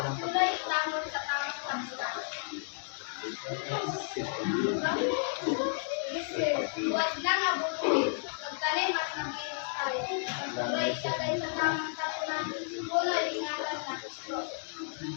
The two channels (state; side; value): silent; right; digital silence